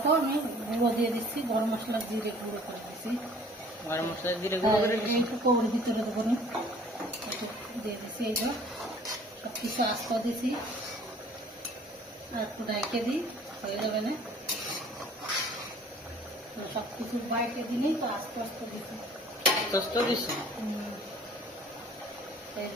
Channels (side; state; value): both; normal; correlation 0.52